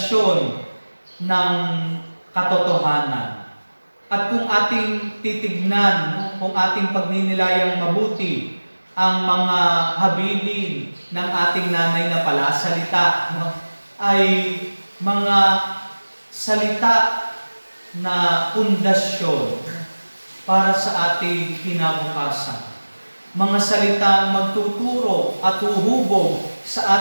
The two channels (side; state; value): both; inverted; correlation -1.00